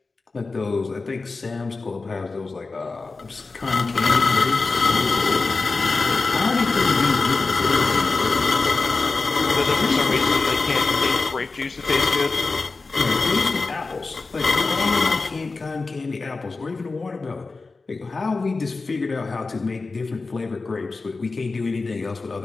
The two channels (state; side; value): quieter; right; 3.9 dB